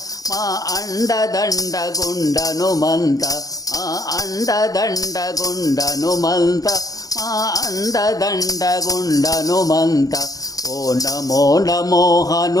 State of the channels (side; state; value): right; late; 0.17 ms